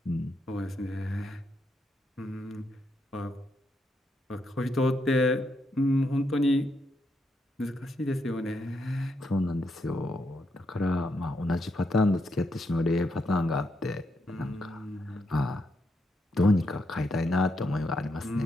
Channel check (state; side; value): normal; both; correlation 0.80